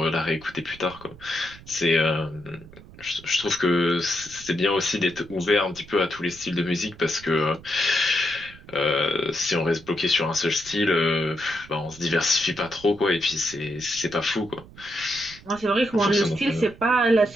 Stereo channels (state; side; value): noise; right; rumble, 20 dB below the sound